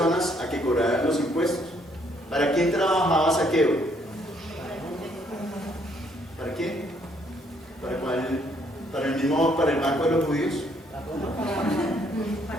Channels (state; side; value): normal; both; correlation 0.68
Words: a que cobraran los impuestos. ¿Para quién trabajaba Zaqueo? ¿Para quién? ¿Para cuál? ¿Para el banco de los judíos?